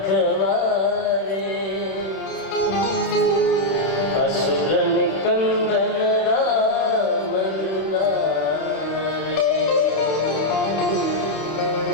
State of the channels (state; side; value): late; right; 31 ms